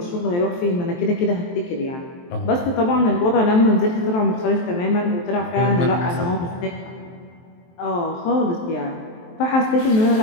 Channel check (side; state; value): right; late; 23 ms